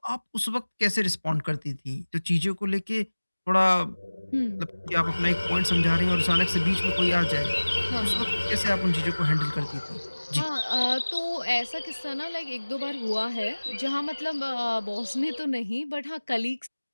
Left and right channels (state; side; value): inverted; both; correlation -1.00